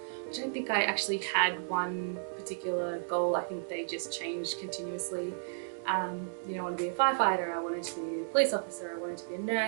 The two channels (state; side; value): silent; left; digital silence